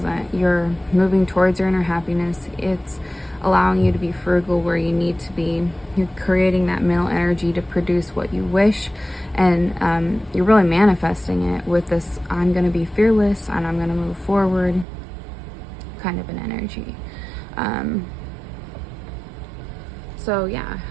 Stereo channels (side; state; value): left; drops out; at 14.9 s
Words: You're moving towards your inner happiness. It's allowing you to be frugal where you need to be. You're creating that mental energy to produce what you wish, and you're really manifesting it with this I'm going to be fearless and I'm going to move forward kind of an energy. So yeah,